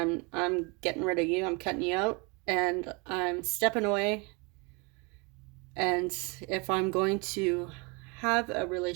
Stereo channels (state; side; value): quieter; left; 29.4 dB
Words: getting rid of you, I'm cutting you out, and I'm stepping away. And if I'm going to have a